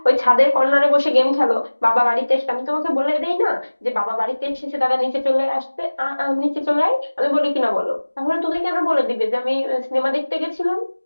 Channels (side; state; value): both; inverted; correlation -1.00